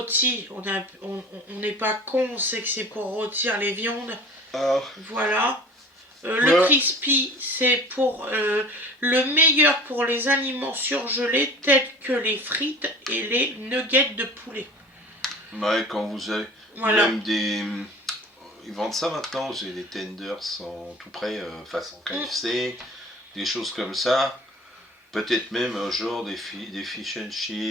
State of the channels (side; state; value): both; normal; correlation 0.42